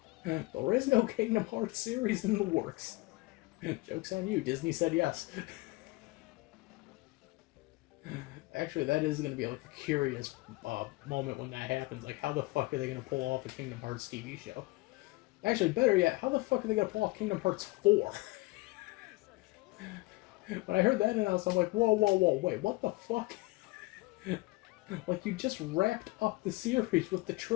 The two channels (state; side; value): quieter; right; 22.1 dB